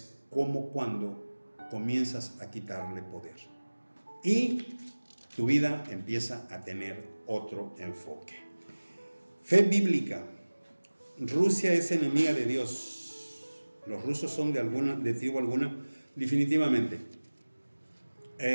como cuando comienzas a quitarle poder y tu vida empieza a tener otro enfoque. Fe bíblica. Rusia es enemiga de Dios. Los rusos son de tribu alguna, definitivamente.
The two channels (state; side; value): inverted; both; correlation -1.00